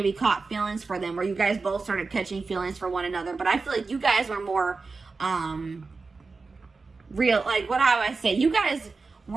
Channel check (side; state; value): left; quieter; 4.2 dB